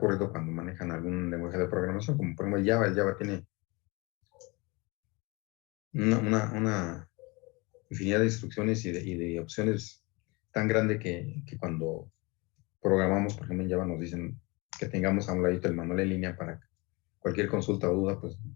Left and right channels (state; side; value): quieter; right; 26.4 dB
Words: cuando manejan algún lenguaje de programación, como por ejemplo el Java. El Java tiene una infinidad de instrucciones y de opciones tan grande que cuando programamos, por ejemplo en Java, nos dicen que tengamos a un ladito el manual en línea para cualquier consulta o duda, pues